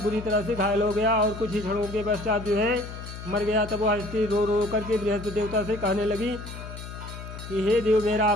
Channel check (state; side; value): noise; left; hum, 11 dB below the sound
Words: बुरी तरह से घायल हो गया और कुछ ही क्षणों के पश्चात जो है मर गया। तब वह स्त्री रो रो करके बृहस्पति देवता से कहने लगी कि हे देव, मेरा